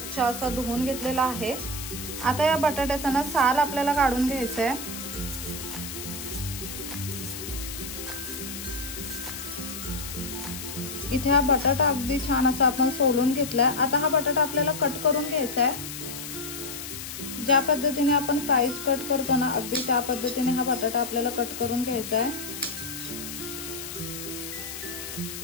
असा धुवून घेतलेला आहे। आता या बटाट्याचा ना साल आपल्याला काढून घ्यायचा आहे। इथे हा बटाटा अगदी छान असा आपण सोलून घेतलाय। आता हा बटाटा आपल्याला कट करून घ्यायचा आहे। ज्या पद्धतीने आपण फ्राईज कट करतो ना, अगदी त्या पद्धतीने हा बटाटा आपल्याला कट करून घ्यायचा आहे।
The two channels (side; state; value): left; noise; hiss, 9 dB below the sound